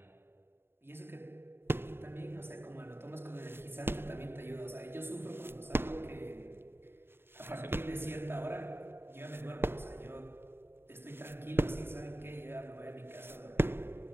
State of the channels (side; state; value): left; late; 0.11 ms